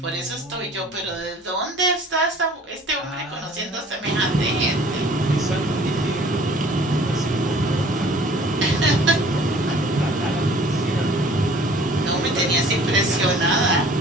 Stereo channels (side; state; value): both; normal; correlation 0.51